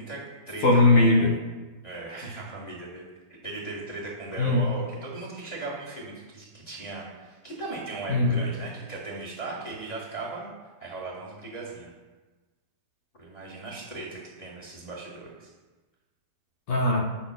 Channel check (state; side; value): late; right; 12 ms